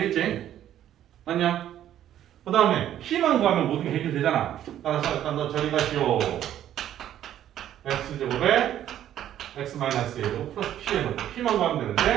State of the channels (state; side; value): quieter; left; 11.4 dB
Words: 맞냐? 그 다음에 p만 구하면 모든 게 해결되잖아. 따라서 일단 너 저리 가시오. x제곱에 x-1제곱 플러스 p에 넣고 p만 구하면